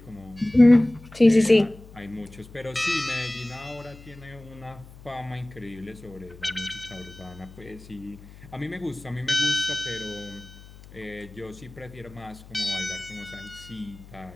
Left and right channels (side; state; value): left; noise; hum, 19 dB below the sound